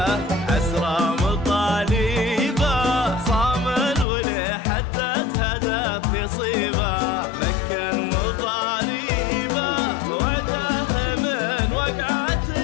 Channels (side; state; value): right; drops out; at 4.0 s